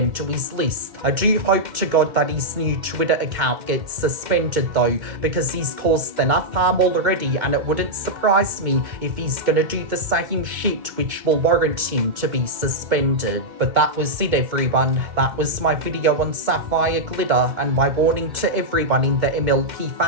to his list. I do hope to God that his new Twitter account gets suspended though, because he's caused enough harm already, and it wouldn't surprise me if he's gonna do the same shit which will warrant him to be suspended. But that was it, everyone. That was my video on Sapphire Glitter and my warning to everyone in the MLP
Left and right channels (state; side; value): late; left; 2.2 ms